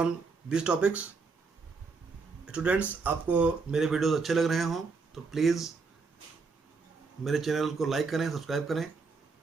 this topics. Students, आपको मेरे videos अच्छे लग रहे हों तो प्लीज़ मेरे चैनल को लाइक करें, सब्सक्राइब करें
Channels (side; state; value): left; quieter; 4.5 dB